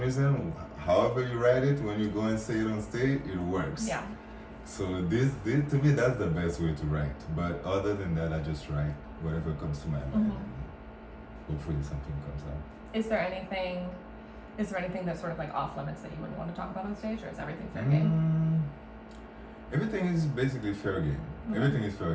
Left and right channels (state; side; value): identical; both; correlation 1.00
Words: however you write it, when you go and say it on stage, it works. Yeah. So this to me that's the best way to write. But other than that, I just write whatever comes to my mind. Hopefully something comes out. Is there anything that's sort of like off limits that you wouldn't want to talk about on stage, or is everything fair game? Everything is basically fair game. Everything is fair